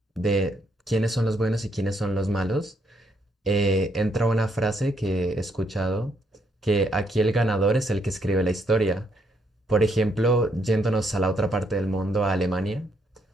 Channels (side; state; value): both; normal; correlation 0.74